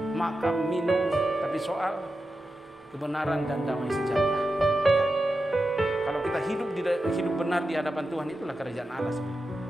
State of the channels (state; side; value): normal; both; correlation 0.90